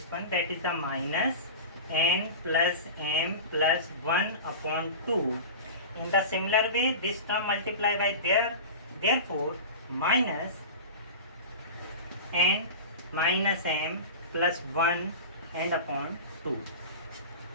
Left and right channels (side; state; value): both; inverted; correlation -0.30